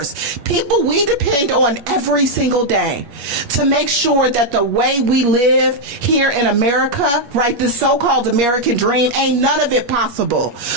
people we depend on every single day to make sure that the way we live here in America, right, this so-called American dream, ain't none of it possible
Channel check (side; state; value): left; late; 8.4 ms